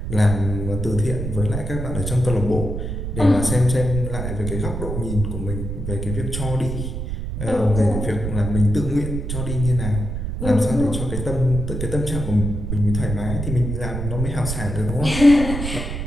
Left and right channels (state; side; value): noise; right; rumble, 4 dB below the sound